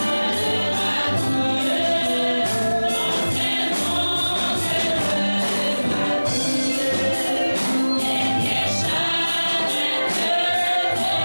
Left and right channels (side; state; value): both; inverted; correlation -1.00